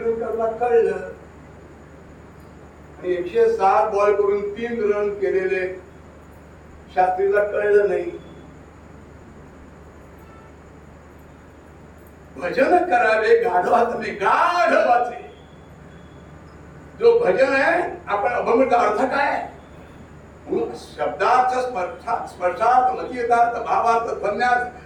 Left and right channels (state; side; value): identical; both; correlation 1.00